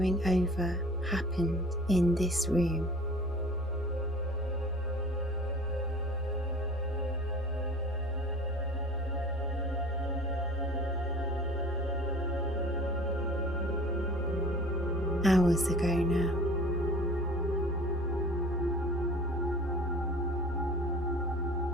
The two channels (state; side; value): normal; both; correlation 0.44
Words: over happened in this room. Hours ago now.